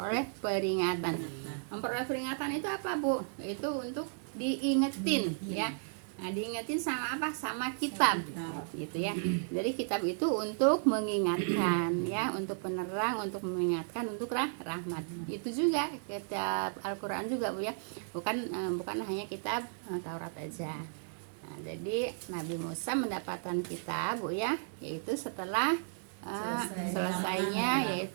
peringatan. Memperoleh peringatan itu apa, Bu? Itu untuk diingetin ya. Nah, diingetin sama apa? Sama kitab gitu ya. Jadi kitab itu untuk mengingatkan ya, untuk penerang, untuk mengingatkan, untuk rahmat. Itu juga kitab Al-Qur'an juga, Bu ya. Bukan hanya kitab Taurat aja. Nah, jadi Nabi Musa mendapatkan kitab, Bu ya, yaitu setelah selesainya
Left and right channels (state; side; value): silent; left; 55 dB below the other